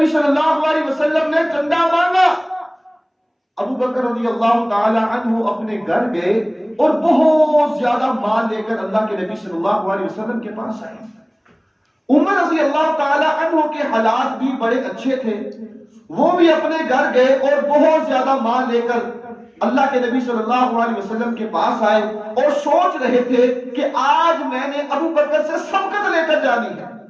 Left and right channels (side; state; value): both; identical; correlation 1.00